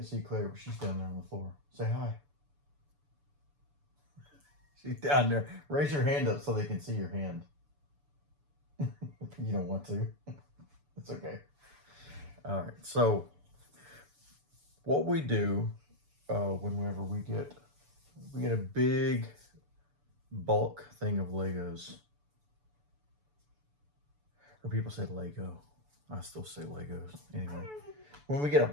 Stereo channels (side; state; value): left; late; 6.9 ms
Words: see Claire, but she's down there on the floor. Say hi. She's down there. Raise your hand up so they can see your hand. You don't want to. It's okay. All right. So what we do whenever we get a big bulk thing of Legos, or people say Lego. I still say Legos anyway. When we get a